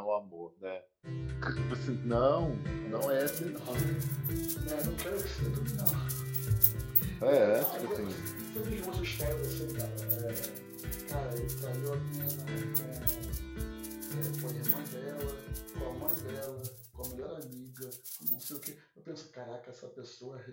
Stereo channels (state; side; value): identical; both; correlation 1.00